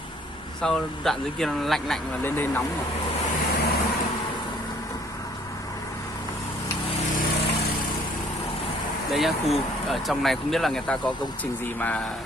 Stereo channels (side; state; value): both; normal; correlation 0.59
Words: Sau đoạn dưới kia nó lạnh và lên đây nóng rồi. Đây nhá, khu ở trong này không biết là người ta có công trình gì mà